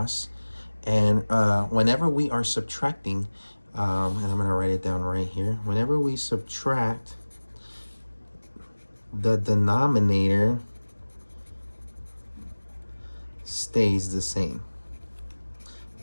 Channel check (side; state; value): both; inverted; correlation -1.00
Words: And whenever we are subtracting, and I'm going to write it down right here. Whenever we subtract, the denominator stays the same.